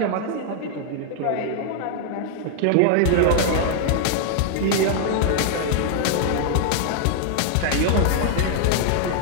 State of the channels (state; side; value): different; both; correlation 0.00